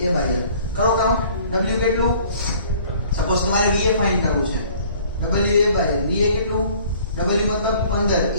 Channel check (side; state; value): both; inverted; correlation -0.53